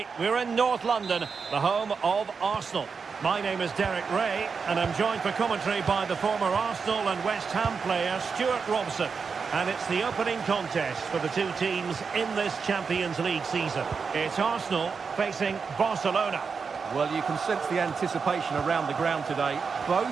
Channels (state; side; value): quieter; left; 5.4 dB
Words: We're in North London, the home of Arsenal. My name is Derek Ray, and I'm joined for commentary by the former Arsenal and West Ham player Stuart Robson. And it's the opening contest for the two teams in this Champions League season. It's Arsenal facing Barcelona. Well, you can sense the anticipation around the ground today.